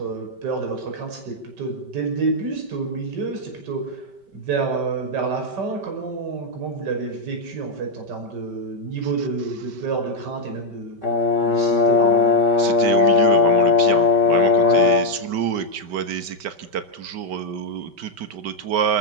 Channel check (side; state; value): left; late; 5.2 ms